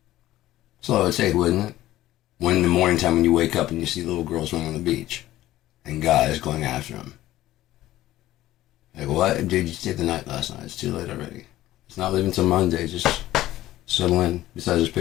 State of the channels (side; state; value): right; quieter; 15.0 dB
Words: That's all it would take, wouldn't it? When in the morning time when you wake up and you see little girls running on the beach, and guys going after them. Like, what? Dude, you stayed the night last night. It's too late already. It's not leaving till Monday. Just settle in. Besides, there's